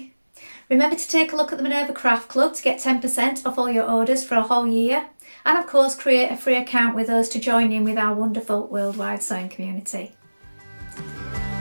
Remember to take a look at the Minerva Craft Club to get 10% off all your orders for a whole year, and of course create a free account with us to join in with our wonderful worldwide sewing community.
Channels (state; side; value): inverted; both; correlation -1.00